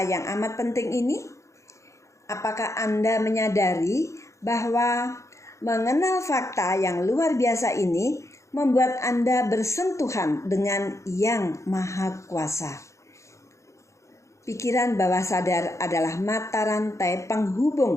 yang amat penting ini? Apakah Anda menyadari bahwa mengenal fakta yang luar biasa ini membuat Anda bersentuhan dengan Yang Maha Kuasa? Pikiran bawah sadar adalah mata rantai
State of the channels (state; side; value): late; right; 0.14 ms